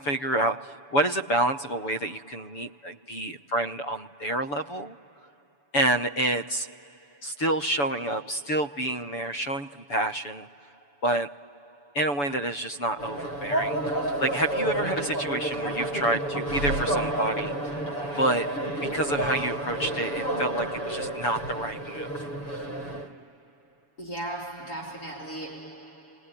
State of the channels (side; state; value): right; late; 7.0 ms